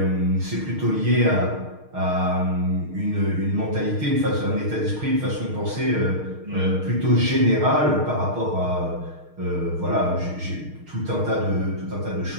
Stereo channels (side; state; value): left; late; 6.5 ms